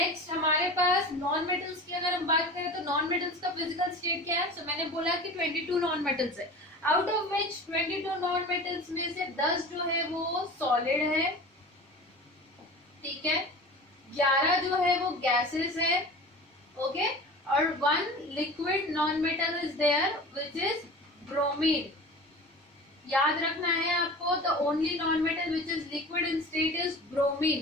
हमारे पास non metals की अगर हम बात करें, तो नॉन मेटल्स का फिजिकल स्टेट क्या है? मैंने बोला कि 22 नॉन मेटल्स है, out of which 22 non metals में से 10 जो है वो सॉलिड है. ठीक है, 11 जो है वो गैसेस है. ओके, और 1 liquid non metal is there which is bromine. याद रखना है आपको, the only non metal which is liquid in state is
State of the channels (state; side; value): normal; both; correlation 0.36